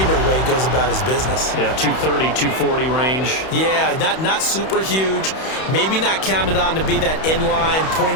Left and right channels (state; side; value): late; right; 31 ms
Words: the way he goes about his business. Yeah, 230, 240 range. Yeah, not super huge. Maybe not counted on to be that inline